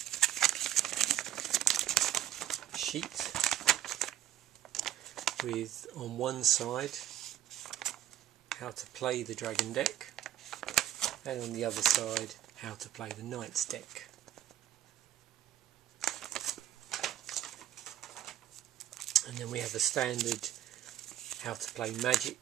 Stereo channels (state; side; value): quieter; left; 12.4 dB